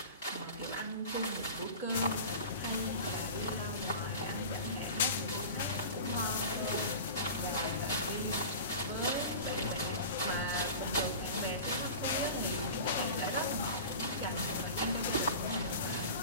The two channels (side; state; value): both; inverted; correlation -0.35